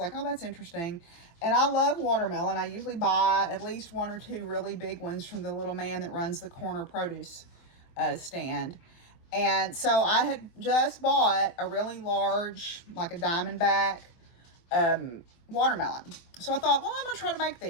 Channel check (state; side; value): late; right; 24 ms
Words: oh, that's interesting. And I love watermelon. I usually buy at least 1 or 2 really big ones from the little man that runs the corner produce stand. And so I had just bought a really large, like a Diamondback watermelon. So I thought, well, I'm gonna try to make